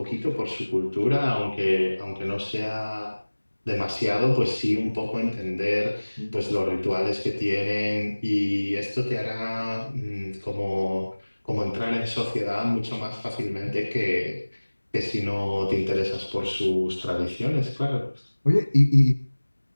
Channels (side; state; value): both; inverted; correlation -1.00